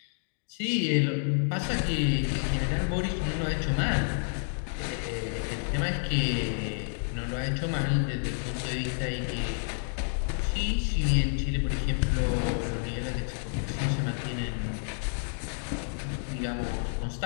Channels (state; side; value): silent; right; digital silence